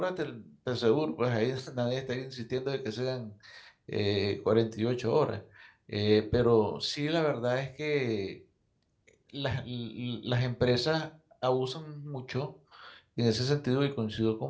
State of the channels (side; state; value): both; identical; correlation 1.00